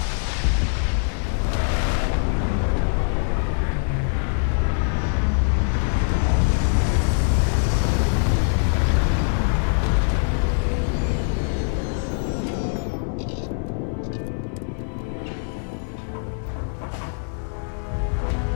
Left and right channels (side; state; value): right; silent; digital silence